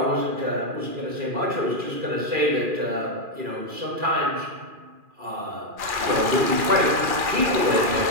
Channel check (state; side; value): late; left; 2.4 ms